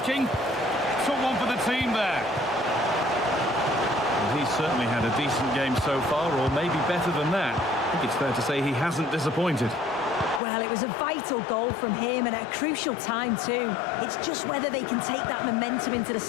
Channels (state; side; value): drops out; right; at 10.4 s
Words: Took one for the team there. He's certainly had a decent game so far, or maybe better than that. I think it's fair to say he hasn't disappointed. Well, it was a vital goal from him and at a crucial time too. It's just whether they can take that momentum into the